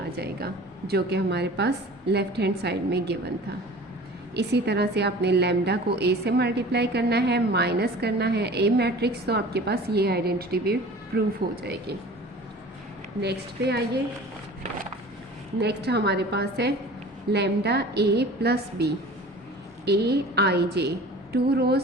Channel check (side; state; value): both; normal; correlation 0.42